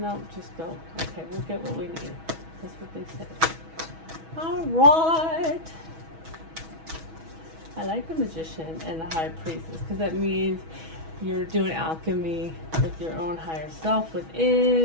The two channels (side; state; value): left; late; 6.2 ms